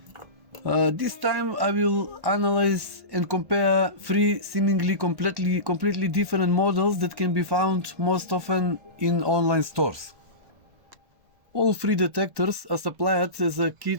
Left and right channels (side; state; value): left; late; 1.1 ms